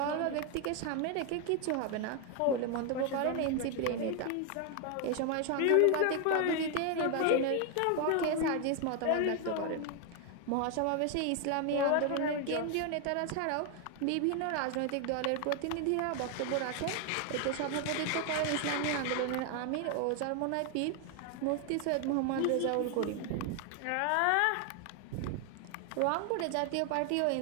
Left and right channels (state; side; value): different; both; correlation 0.01